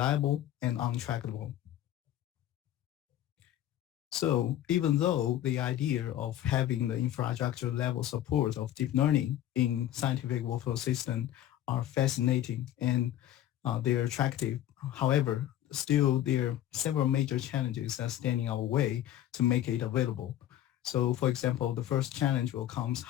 and untrackable. So even though the idea of having the infrastructure level support of deep learning in scientific workflow system are fascinating and they're attractive. However, still there are several major challenges that stand in our way to make it available. So for example, the first challenge will come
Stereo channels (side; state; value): right; quieter; 12.5 dB